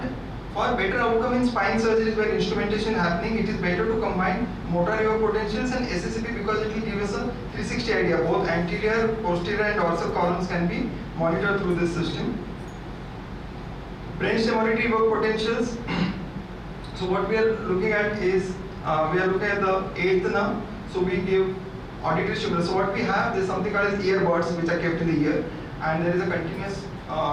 for better outcome in spine surgeries where instrumentation is happening, it is better to combine motor evoked potentials and SSAP, because it will give us a 360 idea. Both anterior, posterior and dorsal columns can be monitored through this system. Brainstem auditory evoked potentials. So what we are looking at is, we are looking at the 8th nerve. So we give auditory stimulus. So what we have, there is something called as earbuds which are kept in the ear, and there is a continuous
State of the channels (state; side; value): identical; both; correlation 1.00